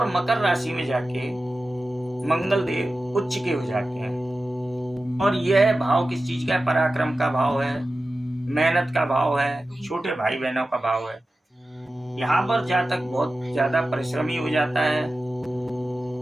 मकर राशि में जाके मंगल देव उच्च के हो जाते हैं और यह भाव किस चीज का है, पराक्रम का भाव है, मेहनत का भाव है, छोटे भाई बहनों का भाव है। यहाँ पर जातक बहुत ज्यादा परिश्रमी हो जाता है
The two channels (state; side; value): normal; both; correlation 0.94